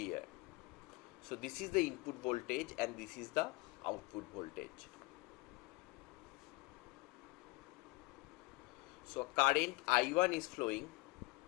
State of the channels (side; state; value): right; quieter; 22.8 dB